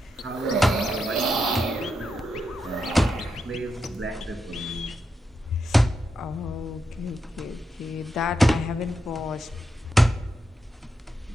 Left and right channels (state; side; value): normal; both; correlation 0.85